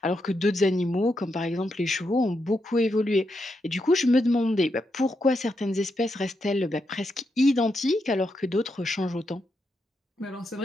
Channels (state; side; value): normal; both; correlation 0.83